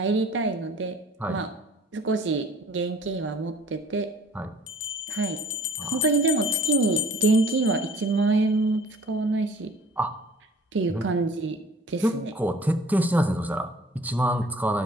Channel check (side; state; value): both; normal; correlation 0.51